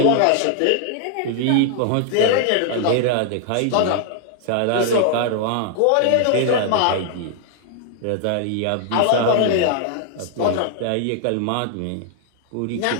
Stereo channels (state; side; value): different; both; correlation 0.00